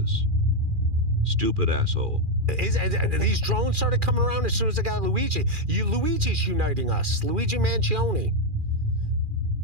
Stupid asshole. These drones started coming around as soon as I got Luigi. Luigi's uniting us. Luigi Mangione.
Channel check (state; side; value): late; left; 2.4 ms